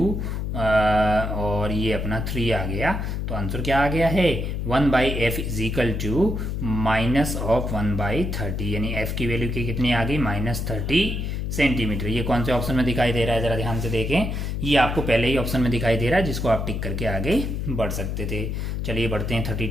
और ये अपना 3 आ गया। तो आंसर क्या आ गया है 1/f is equal to minus of 1/30, यानी f की वैल्यू की कितनी आ गई -30 सेंटीमीटर। ये कौन से ऑप्शन में दिखाई दे रहा है जरा ध्यान से देखें। ये आपको पहले ही ऑप्शन में दिखाई दे रहा है जिसको आप टिक करके आगे बढ़ सकते थे। चलिए बढ़ते हैं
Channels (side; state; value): left; noise; hum, 2 dB below the sound